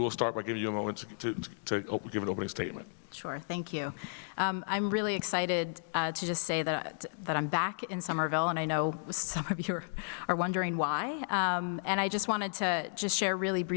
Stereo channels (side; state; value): right; silent; digital silence